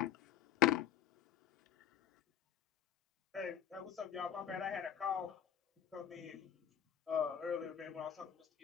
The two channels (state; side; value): quieter; right; 9.7 dB